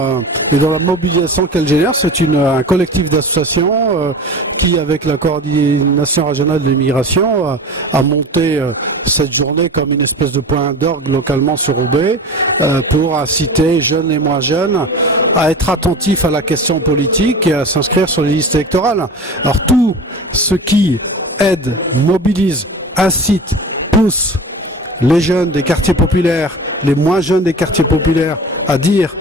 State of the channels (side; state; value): both; normal; correlation 0.34